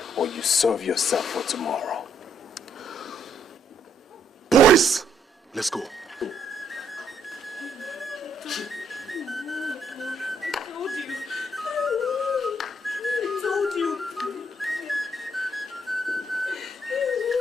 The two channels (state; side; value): normal; both; correlation 0.71